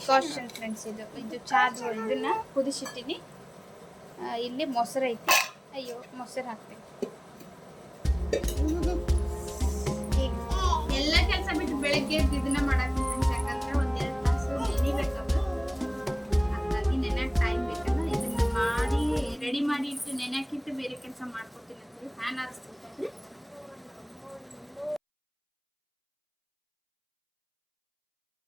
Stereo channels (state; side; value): identical; both; correlation 1.00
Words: ಫ್ರೆಂಡ್ಸ್. ಇದು ಚಾದು ಇದನ್ನು ಕುದಿಸಿಟ್ಟಿನಿ. ಇಲ್ಲಿ ಮೊಸರು ಐತಿ. ಅಯ್ಯೋ, ಮೊಸರು ಹಾಕ್ತೀನಿ. ಎಲ್ಲ ಕೆಲಸ ಬಿಟ್ಟು ಬೆಳಗ್ಗೆ ಇದನ್ನ ಮಾಡಾಕ್ತೀನಿ ಫ್ರೆಂಡ್ಸ್. ಯಾಕಂದ್ರೆ 1-2 ತಾಸು ನೆನಿಬೇಕದು. ಹಾಗಾಗಿ ನೆನೆಯಕ್ಕೆ ಟೈಮ್ ಬೇಕಲ್ಲ. ಇದನ್ನ ಮಾಡಿ ರೆಡಿ ಮಾಡಿ ಇಟ್ಟು ನೆನೆಯಕ್ಕಿಟ್ಟು ಬೇರೆ ಕೆಲಸ ಮಾಡ್ಕೊತೀನಿ ಅಂತ ಫ್ಯಾನ್ ಆರಿಸ್ತೀನಿ.